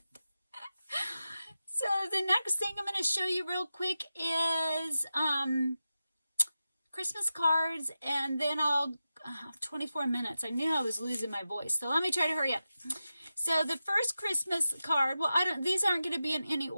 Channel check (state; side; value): inverted; both; correlation -0.92